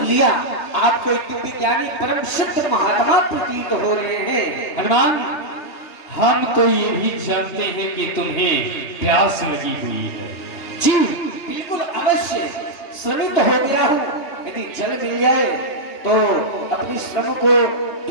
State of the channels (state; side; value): late; right; 3.2 ms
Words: लिया। आपको एक दिव्य ज्ञानी परम सिद्ध महात्मा प्रतीत हो रहे हैं। हनुमान, हम तो ये भी जानते हैं कि तुम्हें प्यास लगी हुई है। जी बिल्कुल अवश्य, श्रमित हो गया हूँ। यदि जल मिल जाए तो अपनी श्रम को